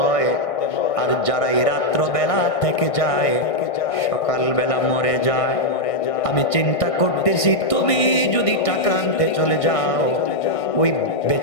আর যারা এই রাত্র বেলা থেকে যায় সকাল বেলা মরে যায়। আমি চিন্তা করতেছি তুমি যদি টাকা আনতে চলে যাও, ওই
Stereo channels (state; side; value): late; right; 1.6 ms